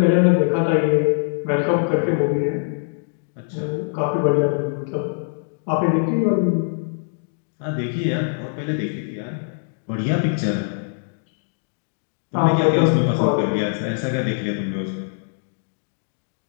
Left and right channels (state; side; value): silent; right; digital silence